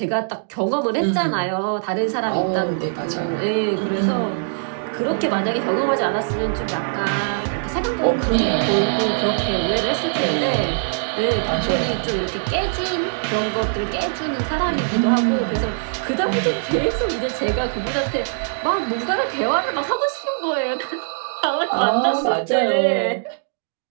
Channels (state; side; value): silent; left; digital silence